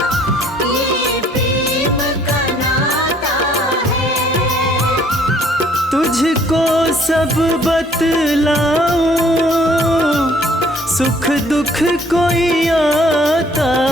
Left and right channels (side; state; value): both; normal; correlation 0.60